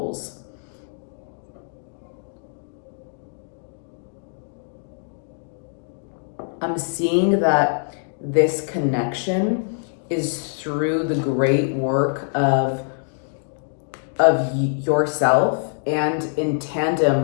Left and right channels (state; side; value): silent; right; digital silence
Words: I'm seeing that this connection is through the great work of yourself, and in